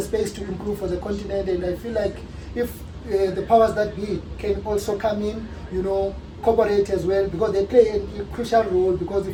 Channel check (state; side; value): identical; both; correlation 1.00